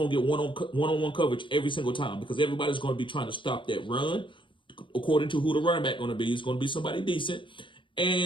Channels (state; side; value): late; right; 0.24 ms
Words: to get one-on-one coverage every single time because everybody's going to be trying to stop that run. According to who the running back going to be, it's going to be somebody decent.